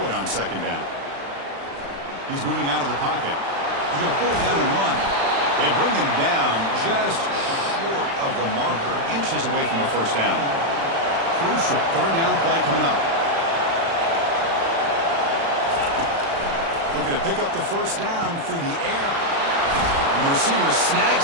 it on 2nd down. He's moving out of the pocket. He's going to pull it down and run. They bring him down just short of the marker, inches away from a 1st down. Crucial 3rd down play coming up. Looking to pick up the 1st down through the air. And the receiver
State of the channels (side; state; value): left; late; 36 ms